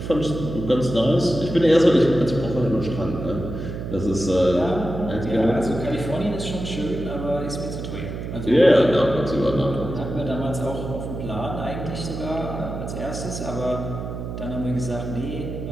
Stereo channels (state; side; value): noise; right; hum, 7 dB below the sound